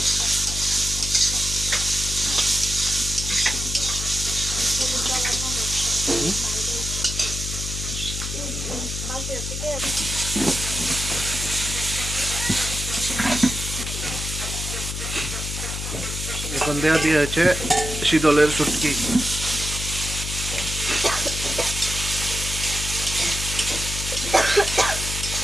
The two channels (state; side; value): noise; left; hum, 5 dB below the sound